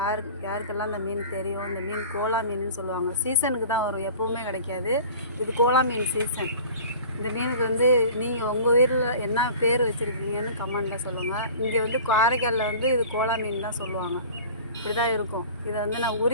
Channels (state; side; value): inverted; both; correlation -0.41